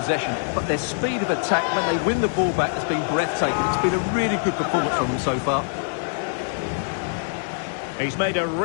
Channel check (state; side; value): silent; right; digital silence